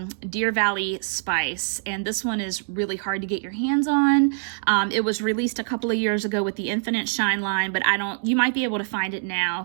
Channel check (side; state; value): left; silent; digital silence